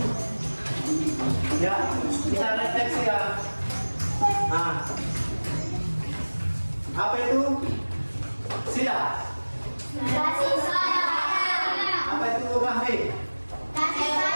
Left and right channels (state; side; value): inverted; both; correlation -1.00